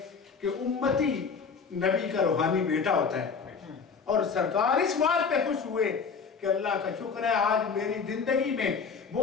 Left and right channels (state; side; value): quieter; right; 5.6 dB